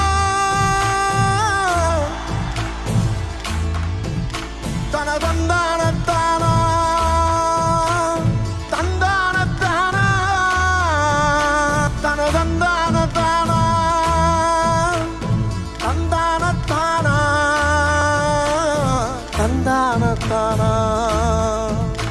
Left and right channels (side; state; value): both; identical; correlation 1.00